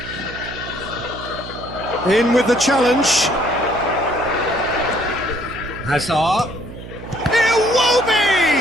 In with the challenge. Hazard. It will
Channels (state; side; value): noise; right; hum, 13 dB below the sound